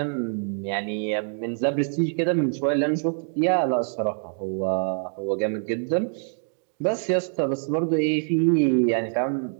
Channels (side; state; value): left; silent; 60 dB below the other